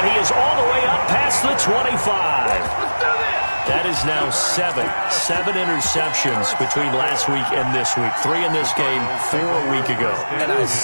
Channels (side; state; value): both; inverted; correlation -1.00